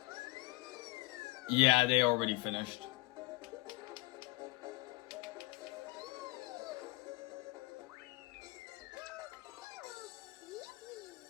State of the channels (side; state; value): right; quieter; 22.4 dB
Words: Yeah, they already finished.